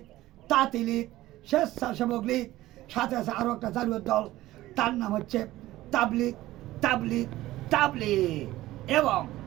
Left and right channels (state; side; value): quieter; left; 16.3 dB